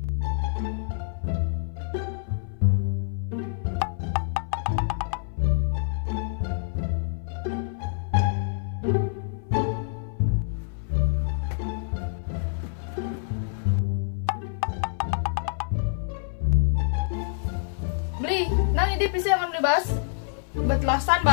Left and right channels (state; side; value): silent; right; 59 dB below the other